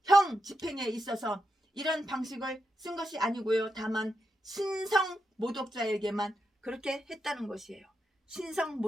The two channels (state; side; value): normal; both; correlation 0.86